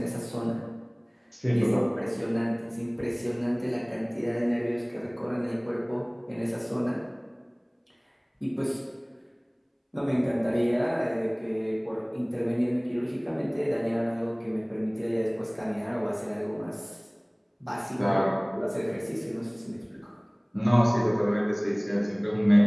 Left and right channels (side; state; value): both; identical; correlation 1.00